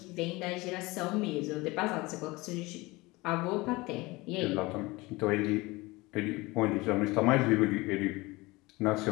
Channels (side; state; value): right; quieter; 22.3 dB